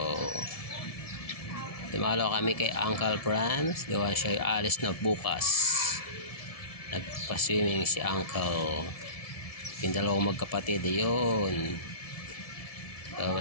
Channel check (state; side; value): late; right; 1.7 ms